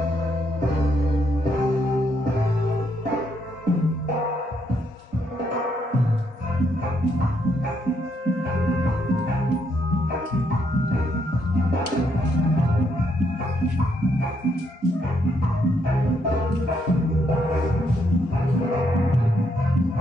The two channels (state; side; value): normal; both; correlation 0.75